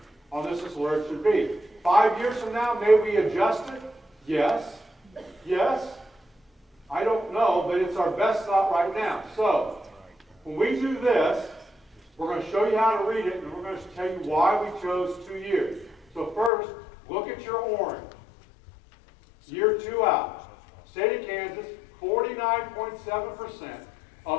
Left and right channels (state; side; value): drops out; right; at 16.5 s